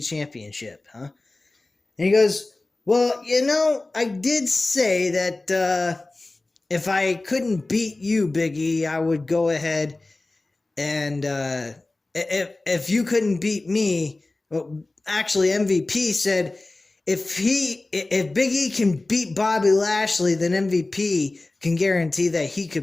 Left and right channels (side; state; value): right; quieter; 3.0 dB